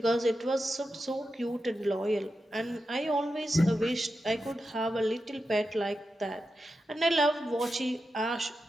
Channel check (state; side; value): normal; both; correlation 0.89